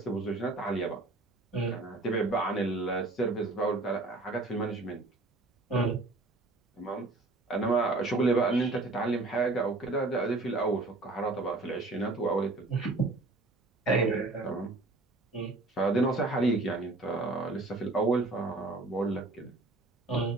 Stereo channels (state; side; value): quieter; left; 3.1 dB